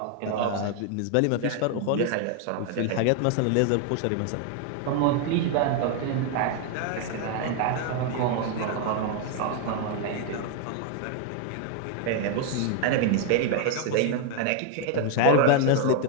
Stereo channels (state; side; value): different; both; correlation 0.00